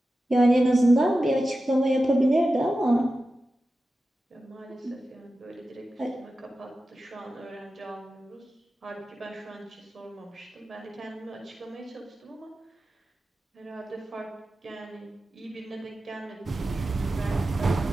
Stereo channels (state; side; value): normal; both; correlation 0.93